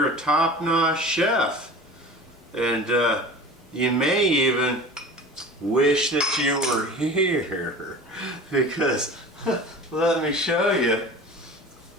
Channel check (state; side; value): normal; both; correlation 0.38